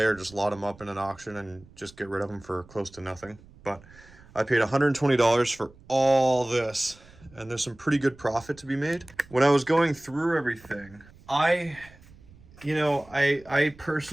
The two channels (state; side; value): noise; right; rumble, 24 dB below the sound